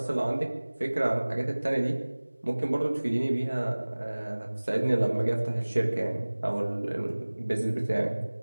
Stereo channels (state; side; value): inverted; both; correlation -1.00